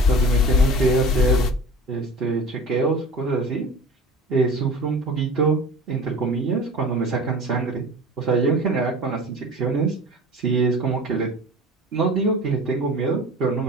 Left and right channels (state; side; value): normal; both; correlation 0.38